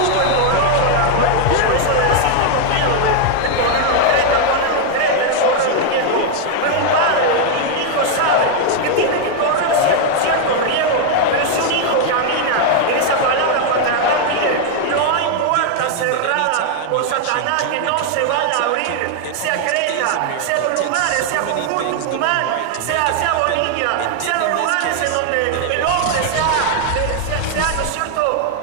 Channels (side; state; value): both; different; correlation 0.00